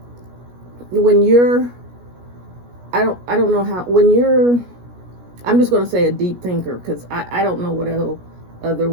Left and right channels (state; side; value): late; left; 17 ms